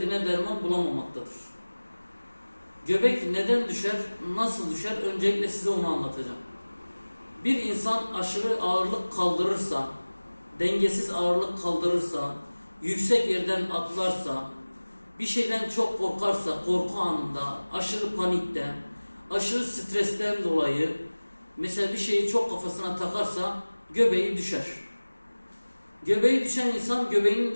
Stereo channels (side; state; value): both; inverted; correlation -1.00